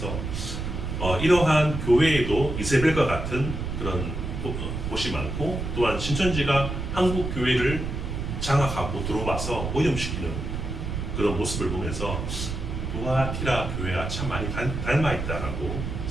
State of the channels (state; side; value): noise; right; rumble, 4 dB below the sound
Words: 이러한 교회에도 이세벨과 같은 그런 곳이 많고 또한 신천지가 한국 교회를 장악하고 들어와서 오염시키는 그런 모습을 보면서 두아티라 교회와 참 많이 닮아 있다라고